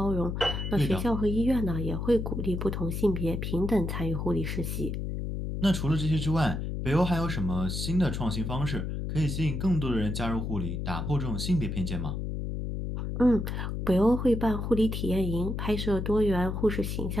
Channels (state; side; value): noise; left; hum, 3 dB below the sound